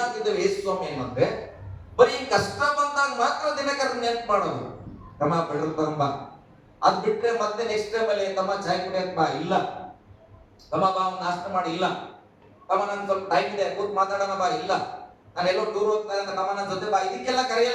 ಯೇಸು ಸ್ವಾಮಿ ಏನಂದ್ರೆ ಬರೀ ಕಷ್ಟ ಬಂದಾಗ ಮಾತ್ರ ದಿನಕರನ್ನ ನೆನ್ಪು ಮಾಡೋದು. ತಮ್ಮ ಪೆಟ್ರೋಲ್ ತಗೊಂಬ, ಅದ್ ಬಿಟ್ರೆ ಮತ್ತೆ ನೆಕ್ಸ್ಟ್ ಟೈಮ್ ಅಲ್ಲಿ ತಮ್ಮ ಚಾಯ್ ಕುಡಿಯಕ್ ಬಾ, ಇಲ್ಲ. ತಮ್ಮ ಬಾ ನಾಷ್ಟ ಮಾಡಿ, ಇಲ್ಲ. ತಮ್ಮ ನನ್ ಸ್ವಲ್ಪ ಟೈಮ್ ಇದೆ ಕೂತ್ ಮಾತಾಡೋಣ ಬಾ, ಇಲ್ಲ. ನಾನು ಎಲ್ಲೋ ಟೂರ್ ಹೋಗ್ತಾ ಇದ್ದ ತಮ್ಮ ನನ್ನ ಜೊತೆ ಬಾ, ಇದಕ್ಕೆಲ್ಲ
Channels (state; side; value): identical; both; correlation 1.00